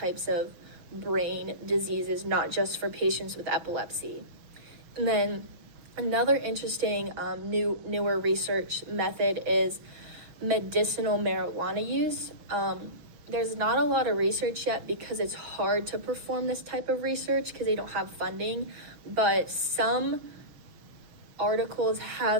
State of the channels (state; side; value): late; left; 6.3 ms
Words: of brain diseases, not just for patients with epilepsy. And then another interesting newer research method is medicinal marijuana use. There's not a lot of research yet because it's hard to perform this type of research because they don't have funding, but some articles